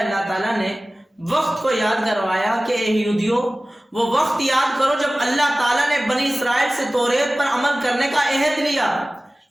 تعالیٰ نے، وقت کو یاد کروایا کہ اے یہودیوں وہ وقت یاد کرو جب اللہ تعالیٰ نے بنی اسرائیل سے توریت پر عمل کرنے کا عہد لیا،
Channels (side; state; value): both; normal; correlation 0.97